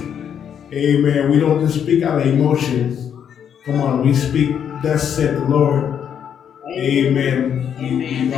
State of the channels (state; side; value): quieter; right; 8.5 dB